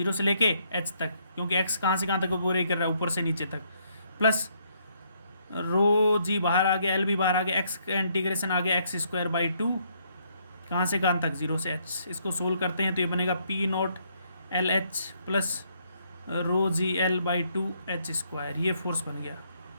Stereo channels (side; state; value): both; inverted; correlation -0.71